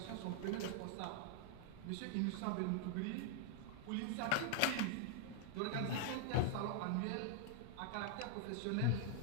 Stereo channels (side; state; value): both; different; correlation -0.01